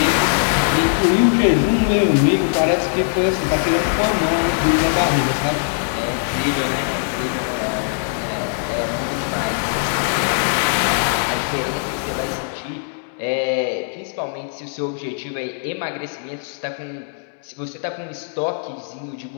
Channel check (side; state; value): right; silent; digital silence